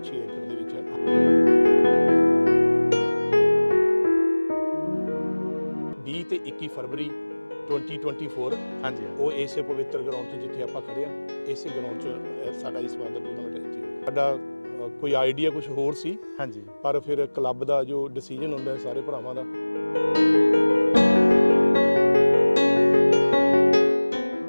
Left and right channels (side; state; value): both; inverted; correlation -1.00